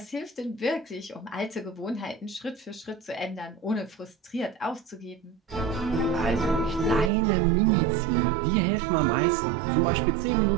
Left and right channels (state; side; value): drops out; left; at 7.1 s